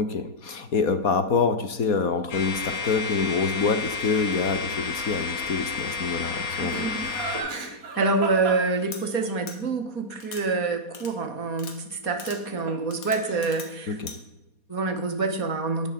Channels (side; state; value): right; late; 4.2 ms